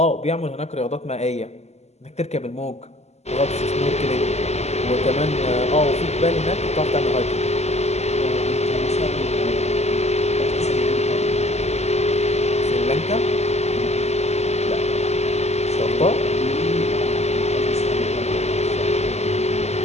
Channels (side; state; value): right; late; 0.32 ms